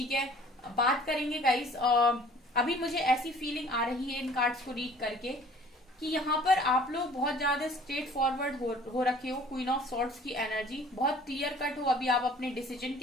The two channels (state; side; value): normal; both; correlation 0.51